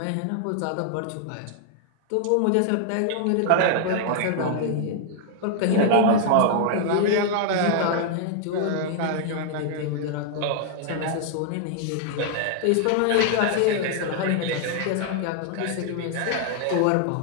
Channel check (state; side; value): different; both; correlation 0.00